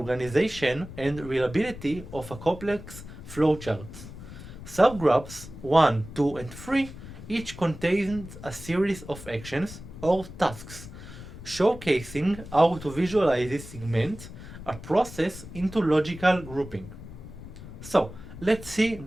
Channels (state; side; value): noise; left; rumble, 14 dB below the sound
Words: and reliability of a complex flowchart. Subgraphs 1, 2, and 3 each contains a series of actions or tasks, showcasing how to visualize this segment a process into logical grouping. So let's see